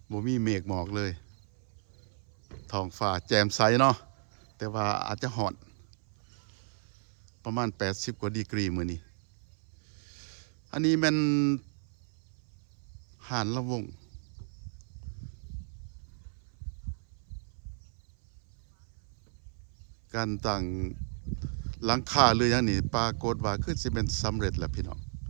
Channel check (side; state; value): left; silent; 56 dB below the other